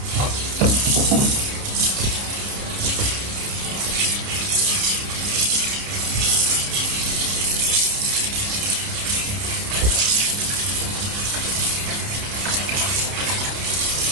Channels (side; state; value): left; late; 30 ms